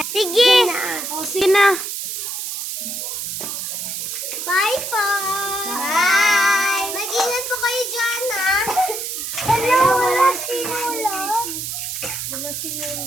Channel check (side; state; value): right; noise; hiss, 5 dB below the sound